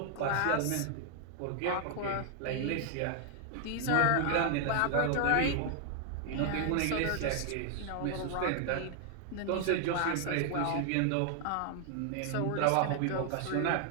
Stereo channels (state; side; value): different; both; correlation 0.00